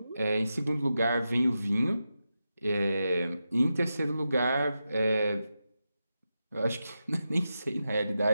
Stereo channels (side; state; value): both; inverted; correlation -0.90